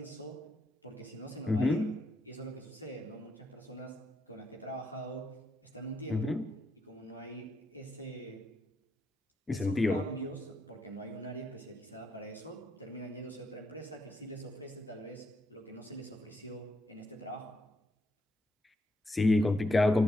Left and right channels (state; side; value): normal; both; correlation 0.80